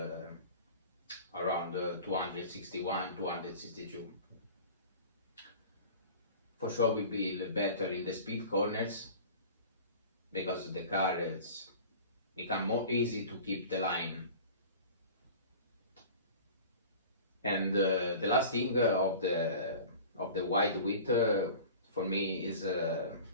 around 261, 262. For sure will be better in the speed corners, because the car is become more easy to keep the line. And the last thing of the wide width for me is,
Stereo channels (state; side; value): inverted; both; correlation -0.40